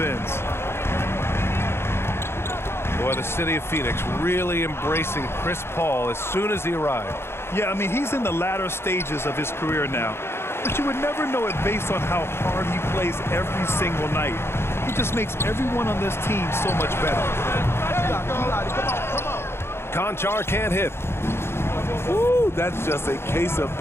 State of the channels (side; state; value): right; late; 0.12 ms